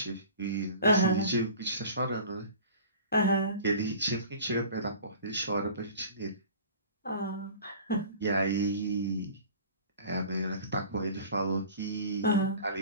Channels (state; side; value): inverted; both; correlation -0.42